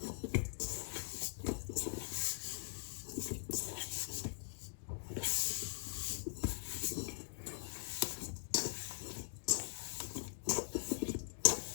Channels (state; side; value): silent; right; digital silence